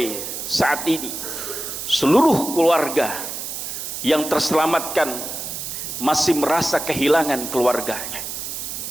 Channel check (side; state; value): right; noise; hiss, 6 dB below the sound